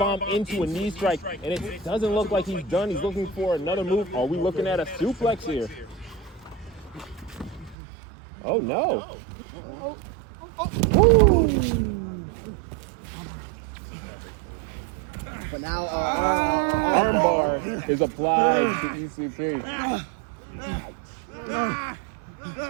into a knee strike, and it doesn't look like he's done. He's looking for another move. Are we looking at a suplex here? Oh, no. But now, armbar is applied to ECP.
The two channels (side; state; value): left; drops out; at 7.8 s